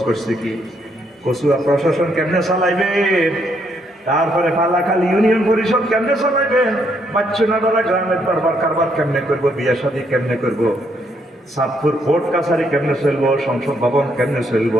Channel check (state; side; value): normal; both; correlation 0.73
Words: করছে কি? কচুয়া প্রশাসন কেমনে চালাইবেন, তারপরে ফালাখালী ইউনিয়ন পরিষদ কেমনে চালাইবেন, বাচ্চুনাডারা গ্রামের দরবার কারবার কেমনে করবো, বিয়া শাদী কেমনে করবো, সাতপুর কোর্ট কাছারি কেমনে চলবো, সংসদ ভবন কেমনে চলবো,